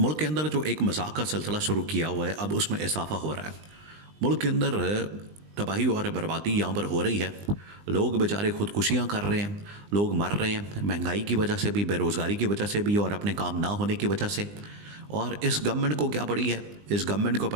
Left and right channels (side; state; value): left; late; 20 ms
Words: के अंदर जो एक मजाक का सिलसिला शुरू किया हुआ है, अब उसमें इजाफा हो रहा है। मुल्क के अंदर तबाही और बर्बादी यहाँ पर हो रही है। लोग बेचारे खुदकुशियाँ कर रहे हैं, लोग मर रहे हैं, महंगाई की वजह से भी, बेरोज़गारी की वजह से भी और अपने काम ना होने की वजह से। और इस गवर्नमेंट को क्या पड़ी है? इस गवर्नमेंट को